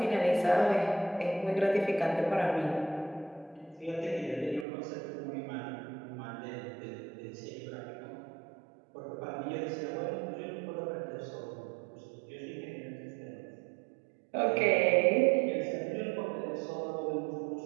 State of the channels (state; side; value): drops out; left; at 4.7 s